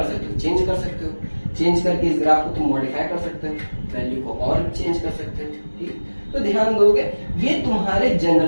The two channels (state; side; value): inverted; both; correlation -1.00